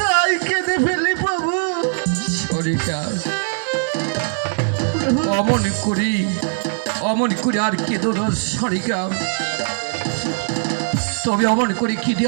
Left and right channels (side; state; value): left; silent; digital silence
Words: কেঁদে ফেলি প্রভু। সনিকা, অমন করি আর কেঁদো না সনিকা। তবে অমন করে কি